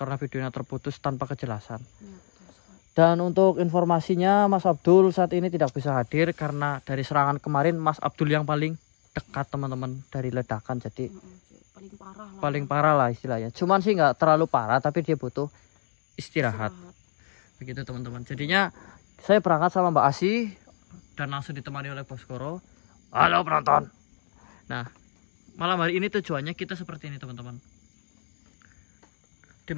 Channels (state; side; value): silent; right; 60 dB below the other